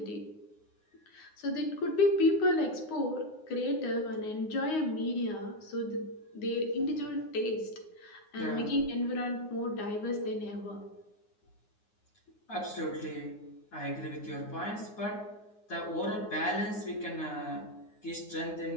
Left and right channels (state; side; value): late; right; 9.6 ms